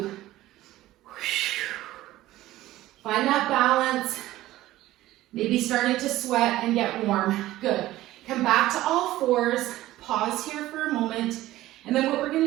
Find that balance. Maybe starting to sweat and get warm. Good. Come back to all fours. Pause here for a moment. And then what we're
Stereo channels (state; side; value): quieter; left; 15.8 dB